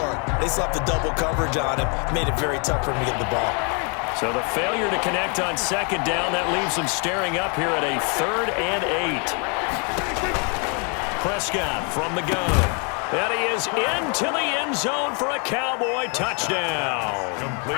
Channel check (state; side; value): quieter; right; 36.2 dB